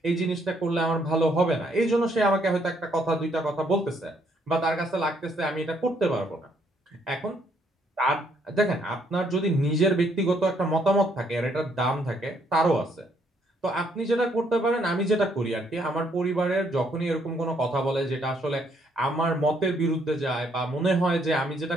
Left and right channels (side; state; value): both; normal; correlation 0.69